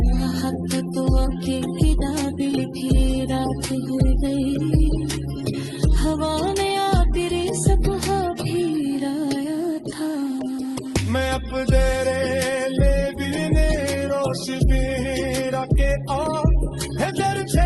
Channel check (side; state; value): both; identical; correlation 1.00